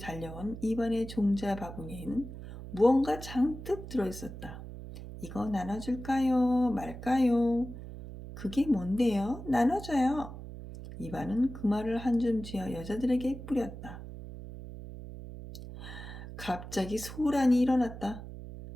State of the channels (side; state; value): right; noise; hum, 11 dB below the sound